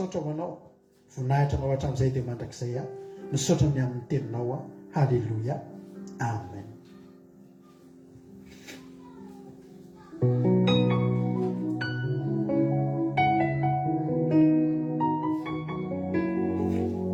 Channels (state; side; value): identical; both; correlation 1.00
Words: ho anao. Voninahitra anao hatramin'izay dia mandrakizay aho. Misaotra ny amin'ny teninao aho. Halleluia. Amen.